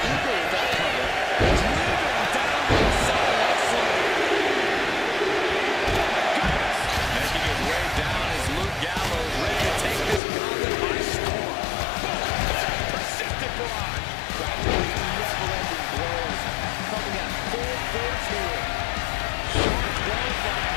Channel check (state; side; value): drops out; right; at 10.2 s